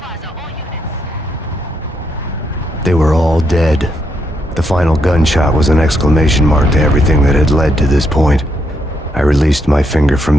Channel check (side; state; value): both; normal; correlation 0.78